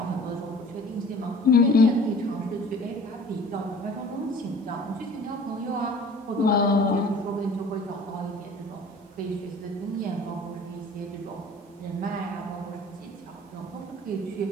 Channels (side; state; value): both; normal; correlation 0.47